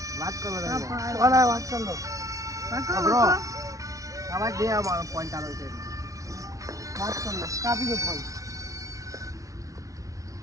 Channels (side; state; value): left; late; 0.16 ms